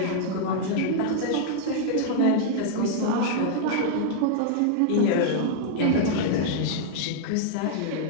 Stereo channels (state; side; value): different; both; correlation -0.01